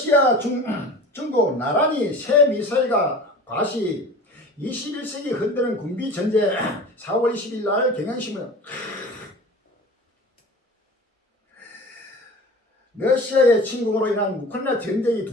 중국 나란히 새 미사일과 과시 21세기 흔드는 군비 전제 4월 20일 날 경향신문 러시아의 침공으로 인한 우크라이나 전쟁이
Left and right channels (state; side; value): normal; both; correlation 0.38